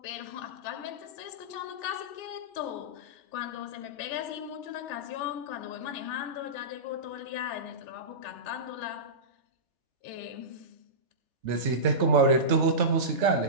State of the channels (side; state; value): left; late; 3.4 ms